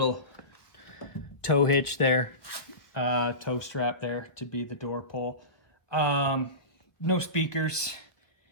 tow hitch there, tow strap there to be the door pull. No speakers.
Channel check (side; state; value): right; late; 1.1 ms